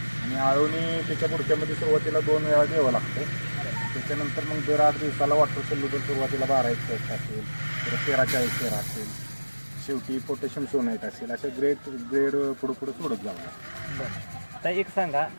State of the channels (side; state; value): both; inverted; correlation -1.00